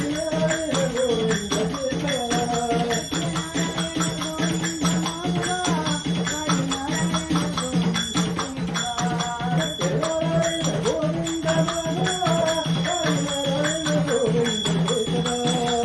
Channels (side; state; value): both; identical; correlation 1.00